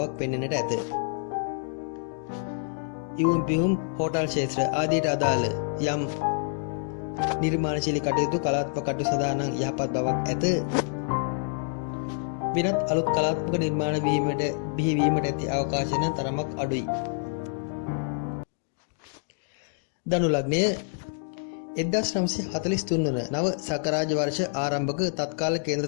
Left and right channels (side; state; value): right; silent; digital silence